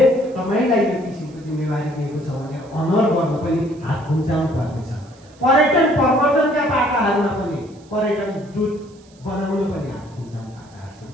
तपाईँलाई यो किसिमको जिम्मेवारी दिएको छ भनेर अनर गर्न पनि हात खुम्चाउनु पर्नेछ। पर्यटन प्रवर्धनका पाटाहरूमा पनि पर्यटन दूत बनाउन पनि हात खुम्चाउनु पाटाहरू छन्।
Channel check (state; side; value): noise; right; hiss, 29 dB below the sound